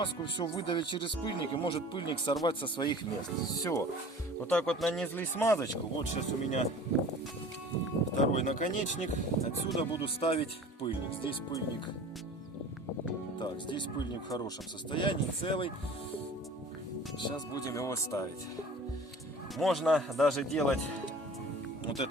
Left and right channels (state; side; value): normal; both; correlation 0.42